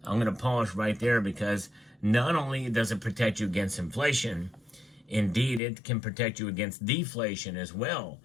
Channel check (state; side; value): drops out; right; at 5.6 s